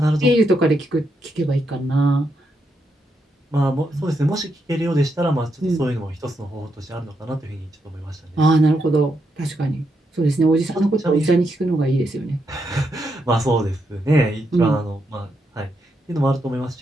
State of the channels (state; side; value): normal; both; correlation 0.81